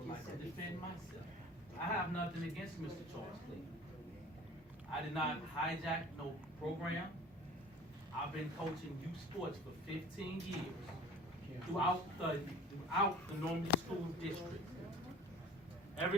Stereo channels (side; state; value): both; normal; correlation 0.44